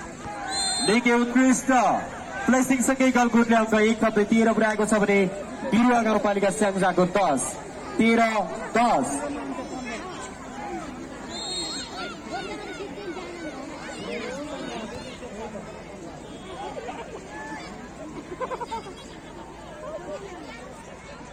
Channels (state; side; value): identical; both; correlation 1.00